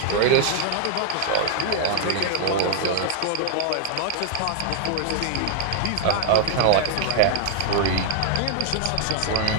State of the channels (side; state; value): both; different; correlation 0.00